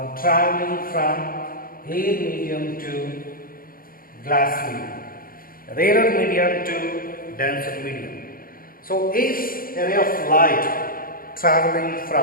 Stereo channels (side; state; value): right; late; 0.42 ms